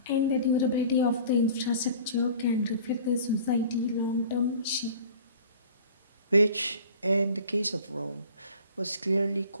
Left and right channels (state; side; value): inverted; both; correlation -0.46